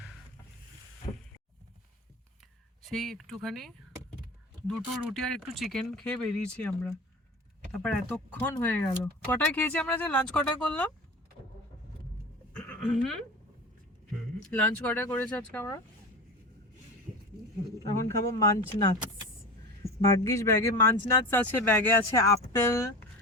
সেই একটুখানি দুটো রুটি আর একটু চিকেন খেয়ে বেরিয়েছি আমরা, তারপর এতক্ষণ হয়ে গেল। কটায় খেয়েছি আমরা, যে লাঞ্চ কটায় করলাম? লাঞ্চ কটায় করেছি আজকে আমরা? এখন খাবো মাঞ্চ নাটস। ভাগ্যিস ব্যাগে মাঞ্চ নাটস আছে, ব্যাগে আছে আপেল,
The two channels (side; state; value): both; normal; correlation 0.32